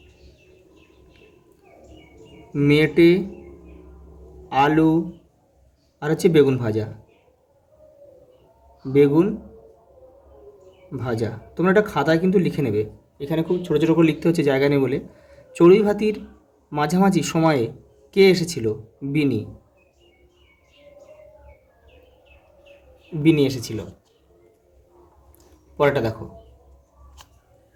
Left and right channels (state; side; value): identical; both; correlation 1.00